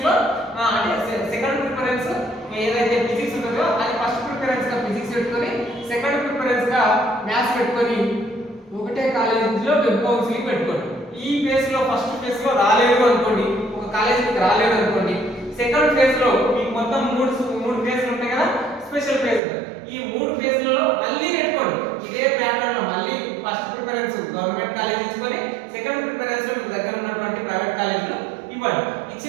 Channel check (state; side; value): drops out; left; at 19.4 s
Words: లో అంటే సెకండ్ ప్రిఫరెన్స్ ఏదైతే ఫిజిక్స్ ఉంటుందో అది ఫస్ట్ ప్రిఫరెన్స్ గా ఫిజిక్స్ పెట్టుకొని సెకండ్ ప్రిఫరెన్స్ గా మ్యాథ్స్ పెట్టుకొని ఒకటే కాలేజీలో వెబ్ కౌన్సిలింగ్ పెట్టుకోండి. ఈ ఫేజ్ లో ఫస్ట్ ఫేజ్ లో రాలేదు అనుకోండి, ఒక కాలేజీకి రాలేదు అనుకోండి, సెకండ్ ఫేజ్ లో మీకు మొత్తం 3 ఫేజ్లు ఉంటాయి కదా, స్పెషల్ ఫేజ్